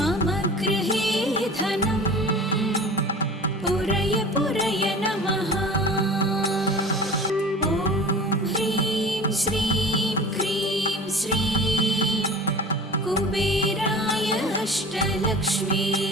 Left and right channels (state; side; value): normal; both; correlation 0.39